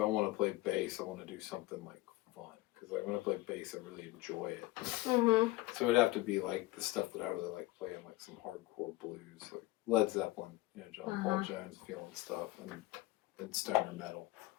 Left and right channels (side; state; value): right; quieter; 18.9 dB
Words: want to play bass, I want to do something, like, fun. Because, like, when I play bass, I really enjoy it. Mm-hmm. So it would have to be, like, the stuff that I really like playing, like some hardcore blues, like Led Zeppelin, John Paul Jones feeling stuff, and stoner metal.